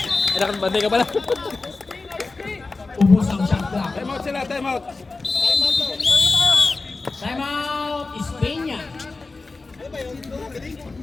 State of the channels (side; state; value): right; quieter; 3.7 dB